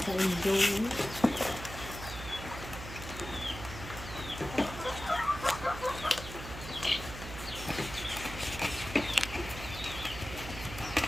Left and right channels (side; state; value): right; noise; hum, 10 dB below the sound